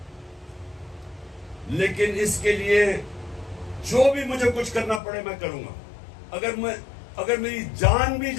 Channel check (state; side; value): drops out; right; at 5.0 s